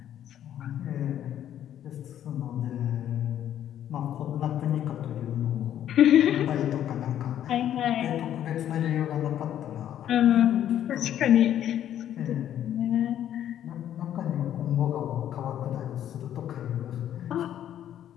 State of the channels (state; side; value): quieter; right; 10.9 dB